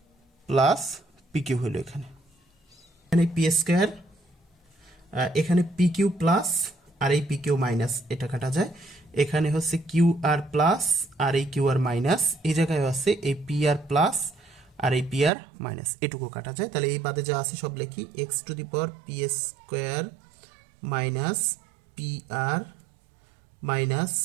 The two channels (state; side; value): drops out; left; at 15.3 s